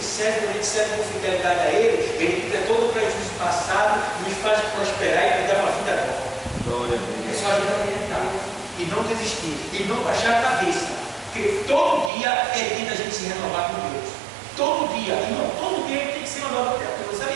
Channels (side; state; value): left; drops out; at 12.1 s